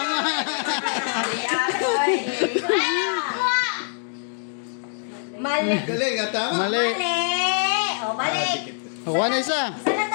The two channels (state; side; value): silent; right; 63 dB below the other